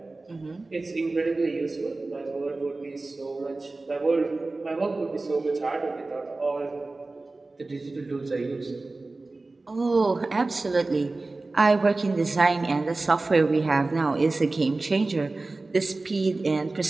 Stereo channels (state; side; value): quieter; left; 3.3 dB